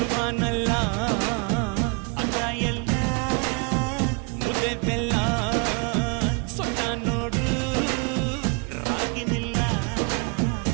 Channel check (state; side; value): quieter; left; 32.4 dB